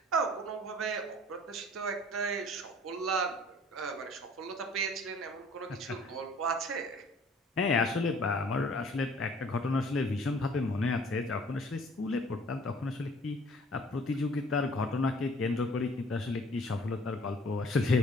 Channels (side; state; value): both; normal; correlation 0.54